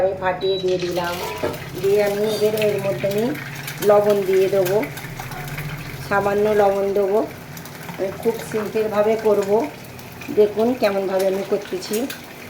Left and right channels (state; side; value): identical; both; correlation 1.00